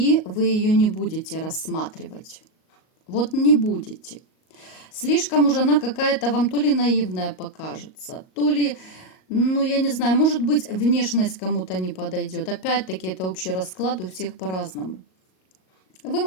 вы ее не будете рассматривать. Вот не будете. Слишком уже она какая-то вам то ли наивная покажется, то ли, ну я не знаю, может быть внешность кому-то не подойдет. Опять-таки это общий расклад, у всех по-разному. Вы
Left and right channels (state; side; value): late; right; 38 ms